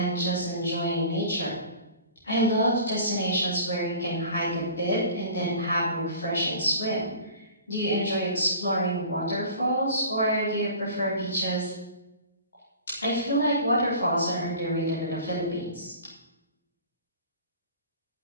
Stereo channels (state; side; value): inverted; both; correlation -0.43